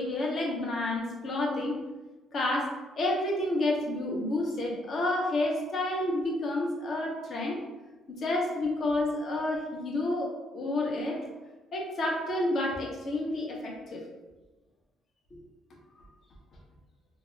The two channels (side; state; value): both; normal; correlation 0.72